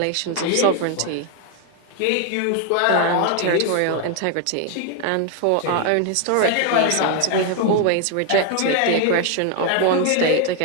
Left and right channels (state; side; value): different; both; correlation 0.01